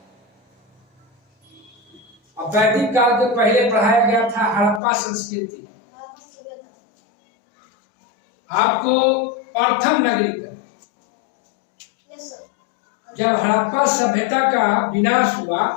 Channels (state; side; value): drops out; right; at 4.8 s